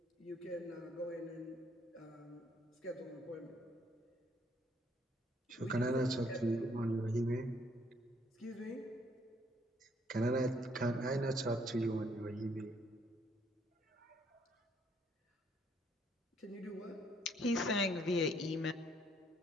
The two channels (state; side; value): normal; both; correlation 0.67